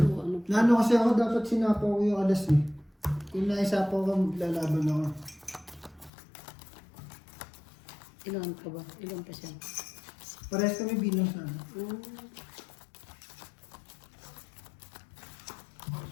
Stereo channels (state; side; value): drops out; right; at 6.1 s